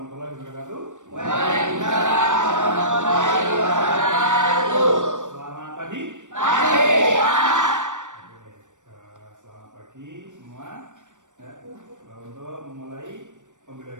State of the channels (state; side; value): late; left; 0.85 ms